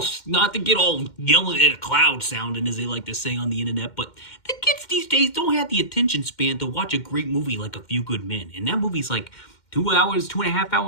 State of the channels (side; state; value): right; late; 2.1 ms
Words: yelling at a cloud sounding, as they like to say on the internet, but the kids these days don't have the attention span to watch a great movie like A Few Good Men. And that movie's like 2.5